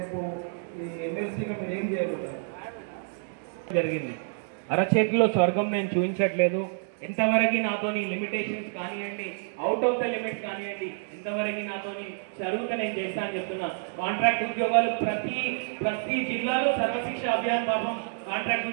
ఈ ఎమ్మెల్సీగా మీరు ఏం చేయగలుగుతారు? జరిగింది అరచేతిలో స్వర్గం నేను చూపించట్లేదు. ఎంతవరకు నాతోని లిమిటేషన్స్ కానివ్వండి, అవుట్ ఆఫ్ ద లిమిట్స్ కానివ్వండి, ఎంతవరకు నాతోని జరుగుతా నేను చేస్తా అని చెప్తున్నా. కాంట్రాక్ట్ ఉద్యోగాలు ప్రతి జిల్లాలో సర్వశిక్ష అభియాన్ పాపం కాంట్రాక్ట్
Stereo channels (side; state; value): left; silent; digital silence